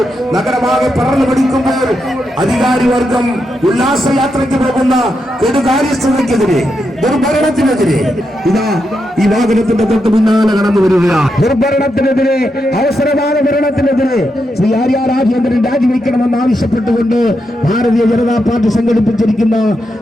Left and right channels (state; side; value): normal; both; correlation 0.84